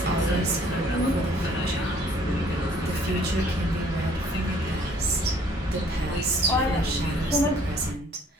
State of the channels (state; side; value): normal; both; correlation 0.59